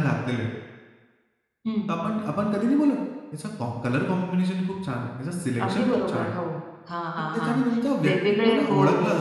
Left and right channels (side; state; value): both; identical; correlation 1.00